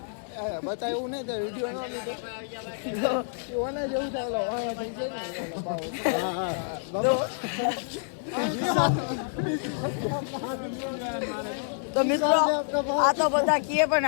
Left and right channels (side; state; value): right; silent; digital silence